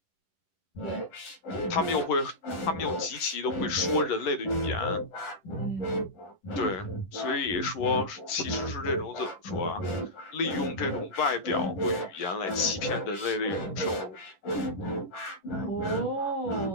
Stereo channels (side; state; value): right; late; 10 ms